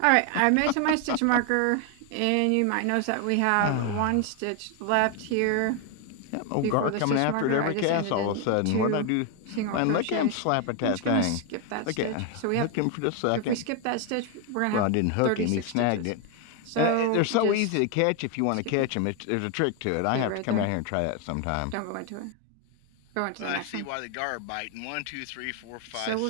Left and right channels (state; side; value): different; both; correlation 0.01